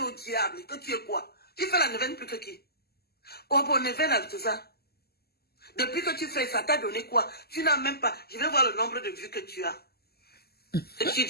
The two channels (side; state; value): right; late; 0.46 ms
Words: au diable que tu es quoi? Tu fais la neuvaine plus que qui? Oh, bon, neuvaine avec tout ça. Depuis que tu fais ça, t'as donné quoi? Tu n'as même pas. Je vais voir le nombre de vues que tu as. Et tu